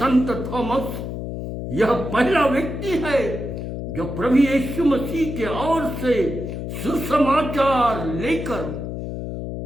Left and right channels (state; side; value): noise; left; hum, 6 dB below the sound